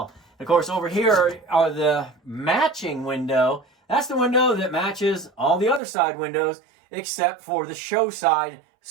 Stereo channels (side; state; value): left; drops out; at 5.8 s